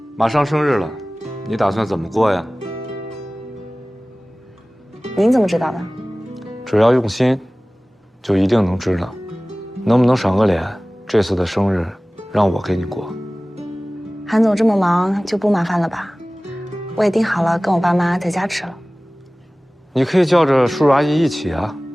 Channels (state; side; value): normal; both; correlation 0.98